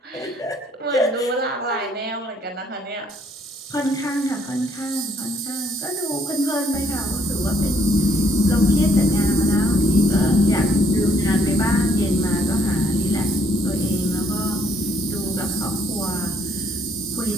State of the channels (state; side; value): normal; both; correlation 0.67